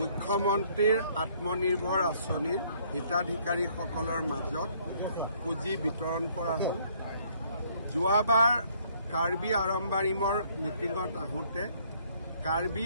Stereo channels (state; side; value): inverted; both; correlation -0.63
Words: আত্মনিৰ্ভৰ আঁচনিৰ হিতাধিকাৰীসকলৰ মাজত পুঁজি বিতৰণ কৰা হ'ল। যোৱাবাৰ কাৰ্বি আৰম্বাৰিমৰ মিটিঙত আহোঁতে কাৰ্বি